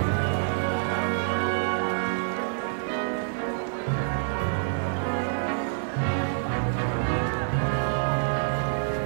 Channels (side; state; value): left; silent; digital silence